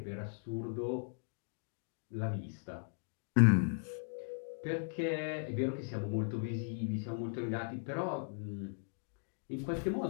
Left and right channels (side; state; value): right; silent; digital silence